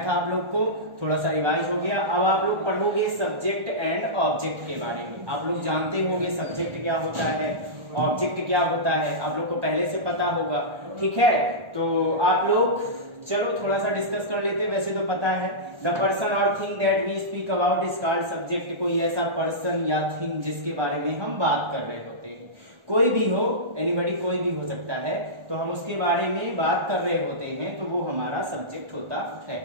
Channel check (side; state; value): left; late; 1.4 ms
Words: था आप लोग को, थोड़ा सा रिवाइज हो गया। अब आप लोग पढ़ोगे सब्जेक्ट एंड ऑब्जेक्ट के बारे में। आप लोग जानते होंगे सब्जेक्ट क्या होता है, ऑब्जेक्ट क्या होता है, आप लोग को पहले से पता होगा, ठीक है। तो आप लोग चलो थोड़ा सा डिस्कस कर लेते हैं। वैसे तो पता है, द पर्सन और thing that we speak about is called subject. कोई ऐसा पर्सन या थिंग जिसके बारे में हम बात कर रहे होते हैं, कोई भी हो, एनीबॉडी, कोई भी हो सकता है, तो हम उसके बारे में बात कर रहे होते हैं, तो वो हमारा सब्जेक्ट होता है।